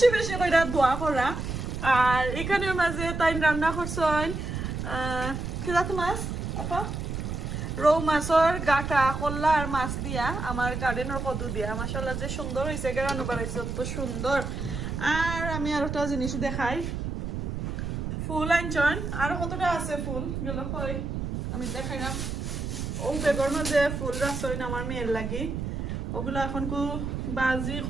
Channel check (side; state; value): right; noise; rumble, 4 dB below the sound